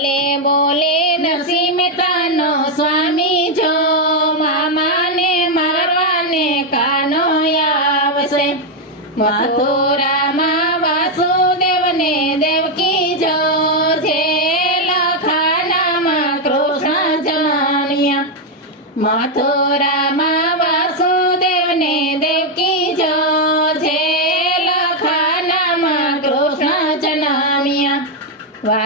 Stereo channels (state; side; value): normal; both; correlation 0.02